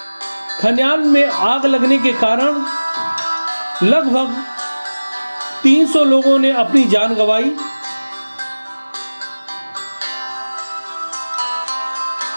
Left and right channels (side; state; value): both; inverted; correlation -1.00